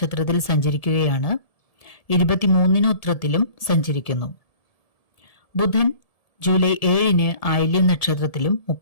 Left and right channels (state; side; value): late; right; 1.7 ms